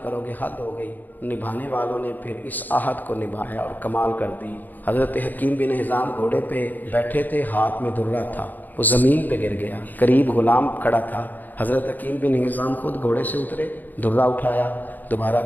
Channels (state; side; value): late; right; 0.085 ms